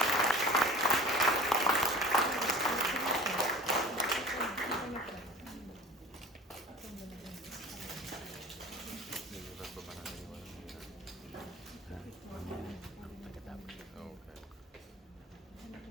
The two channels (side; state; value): both; normal; correlation 0.41